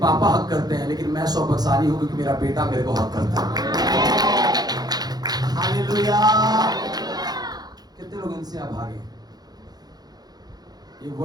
हक करते हैं, लेकिन मैं सौभाग्यशाली हूं क्योंकि मेरा बेटा मेरे को हक करता है। हालेलुया। कितने लोग इनसे अभागे? ये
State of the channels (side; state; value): left; late; 0.19 ms